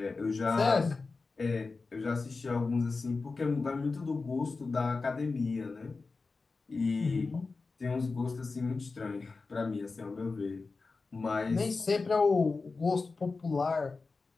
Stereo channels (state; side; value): quieter; right; 4.1 dB